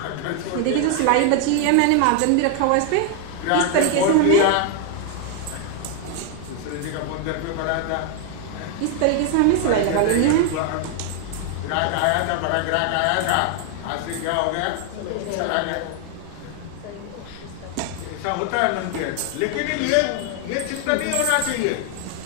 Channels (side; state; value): both; different; correlation 0.00